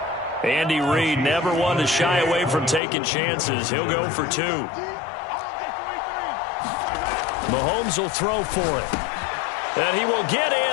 Andy Reid never one to shy away from taking chances. He'll go for 2. Mahomes will throw for it. And he will get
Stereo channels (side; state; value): right; drops out; at 2.8 s